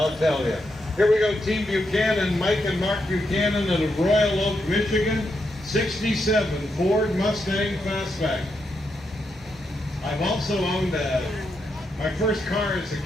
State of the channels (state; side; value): normal; both; correlation 0.82